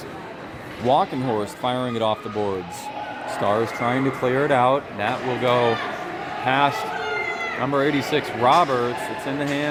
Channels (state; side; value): identical; both; correlation 1.00